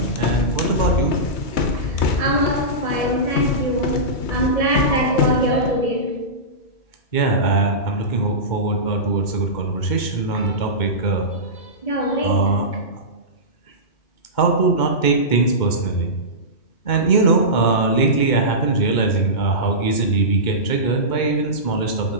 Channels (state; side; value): late; right; 2.1 ms